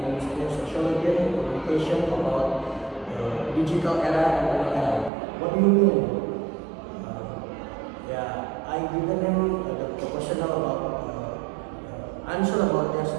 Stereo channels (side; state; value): left; drops out; at 5.1 s